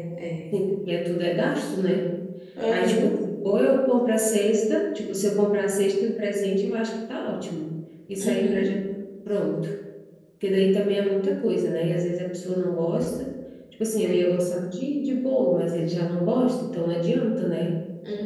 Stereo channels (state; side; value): identical; both; correlation 1.00